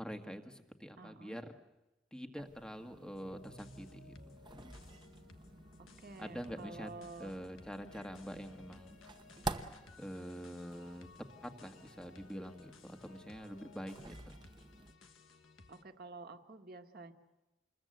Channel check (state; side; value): normal; both; correlation 0.76